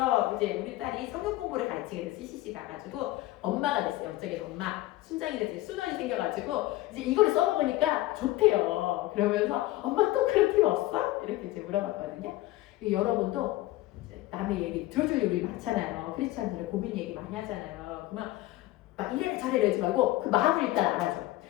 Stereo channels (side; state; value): right; quieter; 17.2 dB